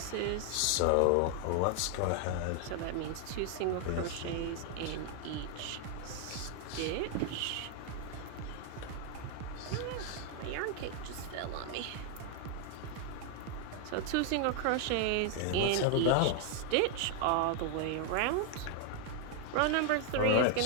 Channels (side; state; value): both; different; correlation 0.00